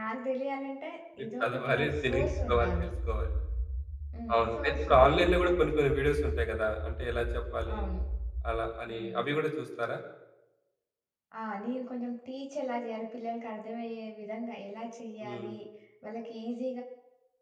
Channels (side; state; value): both; identical; correlation 1.00